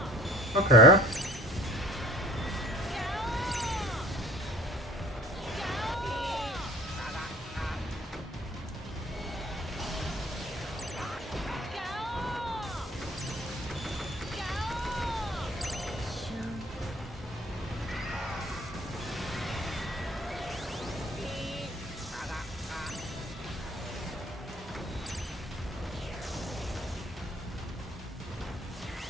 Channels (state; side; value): normal; both; correlation 0.49